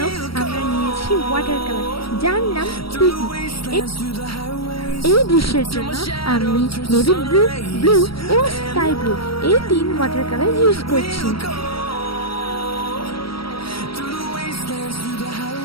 আমরা নিয়েছি ওয়াটার কালার, যার নাম টিটি। এই দৃশ্যের জন্য আমি নেভি ব্লু, ব্লু এবং স্কাই ব্লু এই 3 ওয়াটার কালার ইউজ করছি।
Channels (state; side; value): late; right; 0.75 ms